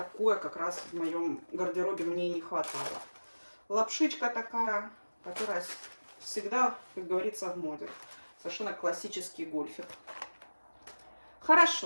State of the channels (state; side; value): inverted; both; correlation -1.00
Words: как раз в моем гардеробе мне и не хватало. Лапшичка такая, которая всегда, как говорится, в моде. Совершенно классический гольфик.